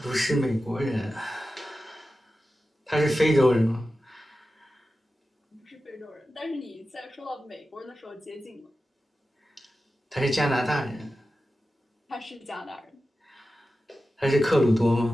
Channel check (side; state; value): both; normal; correlation 0.93